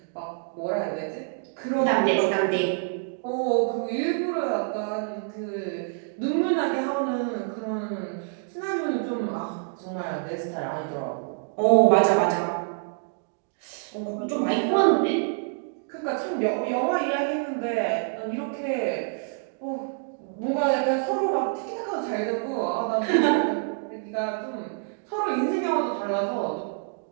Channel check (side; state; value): left; silent; 60 dB below the other